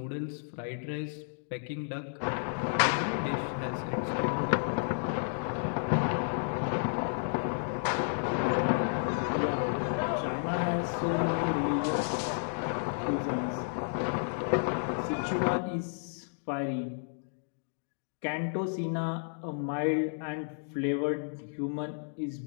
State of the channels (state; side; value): silent; right; digital silence